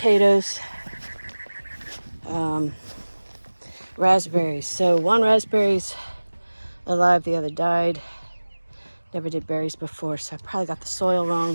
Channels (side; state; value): both; inverted; correlation -1.00